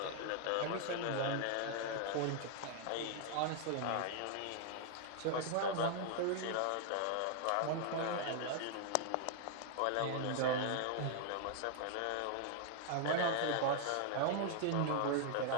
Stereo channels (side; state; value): both; different; correlation 0.00